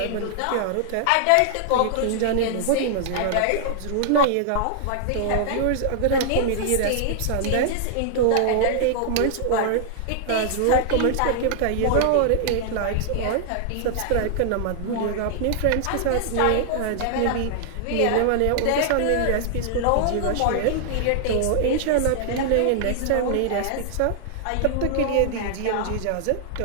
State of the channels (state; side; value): different; both; correlation 0.00